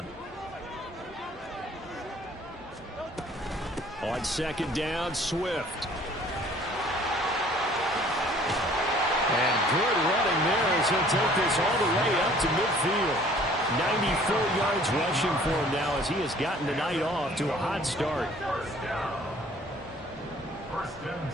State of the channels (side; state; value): both; normal; correlation 0.54